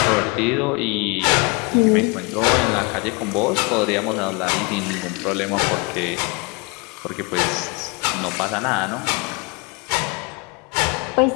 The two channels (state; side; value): quieter; right; 30.0 dB